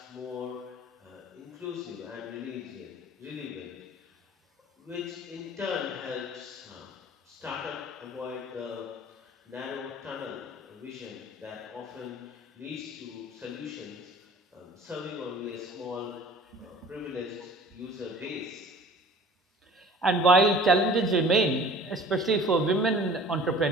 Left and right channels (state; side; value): normal; both; correlation 0.46